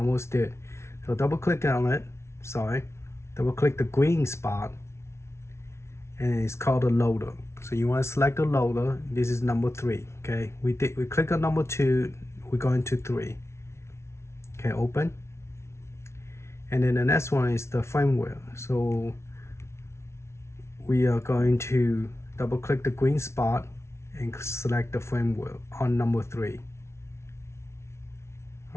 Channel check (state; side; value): late; right; 0.13 ms